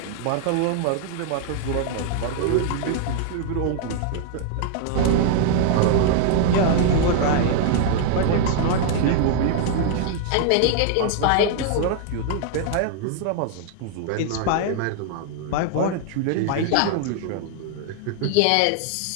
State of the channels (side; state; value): both; different; correlation -0.01